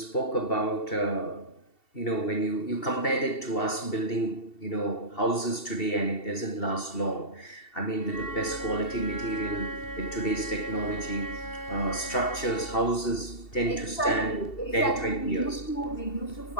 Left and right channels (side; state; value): right; late; 2.7 ms